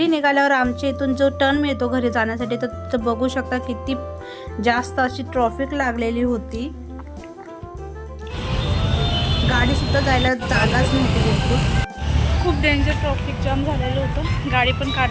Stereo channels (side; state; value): both; identical; correlation 1.00